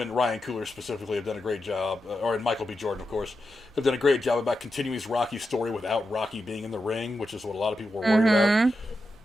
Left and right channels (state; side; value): noise; right; hum, 28 dB below the sound